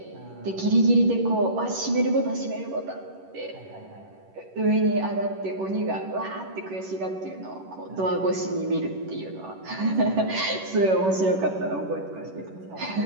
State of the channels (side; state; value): left; late; 11 ms